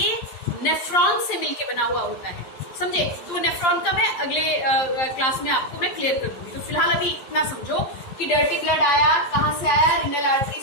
नेफ्रॉन से मिलके बना हुआ होता है, समझे। तो नेफ्रॉन का मैं अगले क्लास में आपको मैं क्लियर कर दूंगी। तो फिलहाल अभी इतना समझो कि डर्टी ब्लड आया, कहाँ से आया, रीनल आर्टरी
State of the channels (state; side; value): late; right; 11 ms